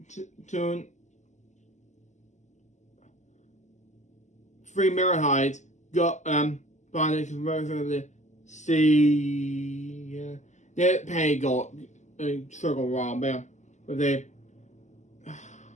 3 mirror heights. Go by the conversion of the C. The paint go circle wrong, man. But they.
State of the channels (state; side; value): late; right; 0.34 ms